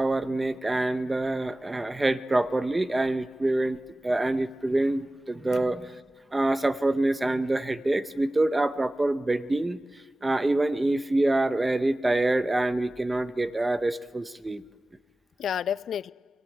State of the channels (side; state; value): both; normal; correlation 0.97